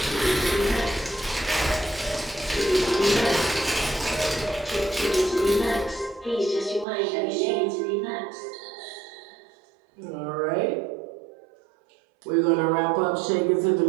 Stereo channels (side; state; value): left; drops out; at 6.9 s